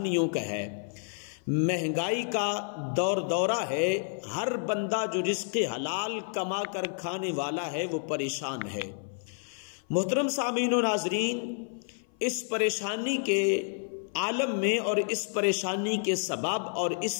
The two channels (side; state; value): right; silent; 56 dB below the other